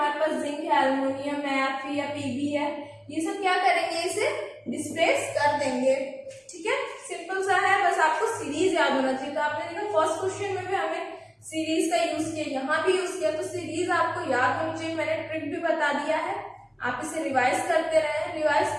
पास जिंक है, एल्युमिनियम है, Fe या Pb है, ये सब क्या करेंगे, इसे डिस्प्लेस कर देंगे। ठीक है, सिंपल सा है, बस आपको सीरीज याद होना चाहिए। तो आपने देखा फर्स्ट क्वेश्चन में भी हमें सीरीज का यूज किया, यहाँ भी यूज किया, तो सीरीज आपको याद होनी चाहिए। मैंने ट्रिक भी बता दिया है, आप इसे रिवाइज करते रहे। रिवाइज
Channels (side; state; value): both; identical; correlation 1.00